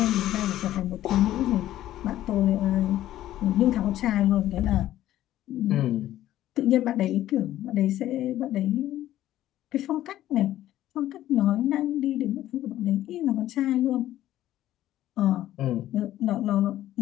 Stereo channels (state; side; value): quieter; right; 13.5 dB